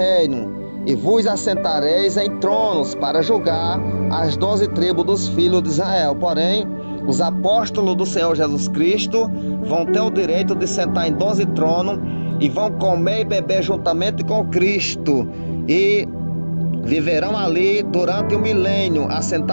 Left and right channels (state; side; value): inverted; both; correlation -1.00